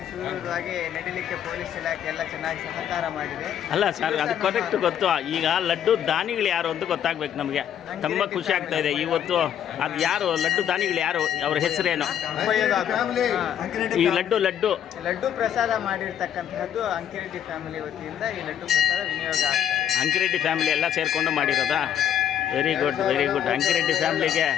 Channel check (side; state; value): right; quieter; 9.7 dB